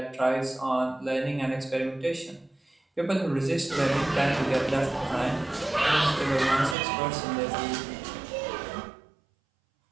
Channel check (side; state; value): left; drops out; at 6.8 s